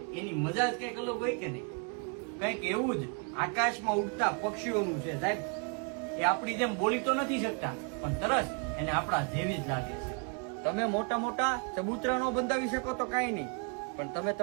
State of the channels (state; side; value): quieter; left; 38.0 dB